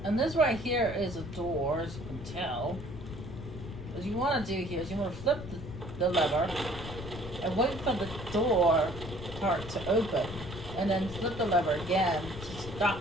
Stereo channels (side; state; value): left; noise; rumble, 11 dB below the sound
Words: And this right here is a door, as you can tell. What you want to do here is you want to flip the lever and wait for the door part to open, and then flip the lever again to